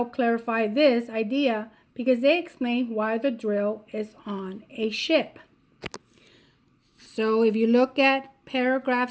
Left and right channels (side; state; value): both; identical; correlation 1.00